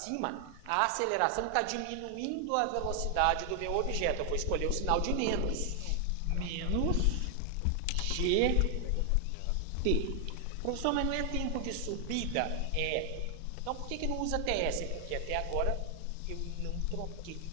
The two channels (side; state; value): both; different; correlation 0.00